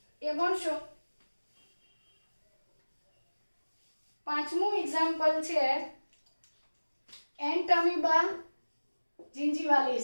એ ભણશો. 5મું એક્ઝામ્પલ છે એન્ટમીબા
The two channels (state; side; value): inverted; both; correlation -1.00